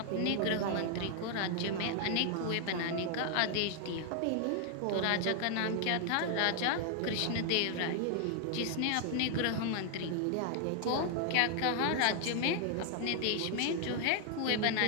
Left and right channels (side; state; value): both; different; correlation 0.00